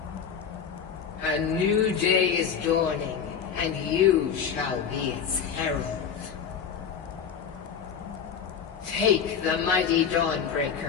A new day is dawning, and you shall be its herald. Take the mighty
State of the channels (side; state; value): right; quieter; 7.3 dB